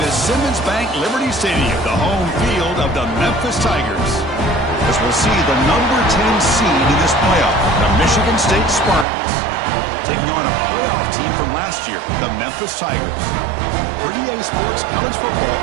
Simmons Bank Liberty Stadium, the home field of the Memphis Tigers. As we'll see the number 10 seed in this playoff, the Michigan State Spartans, taking on a playoff team from last year, the Memphis Tigers. For EA Sports College Football,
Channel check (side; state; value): left; drops out; at 9.1 s